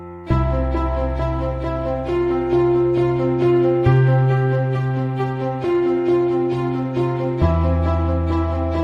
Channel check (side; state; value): both; identical; correlation 1.00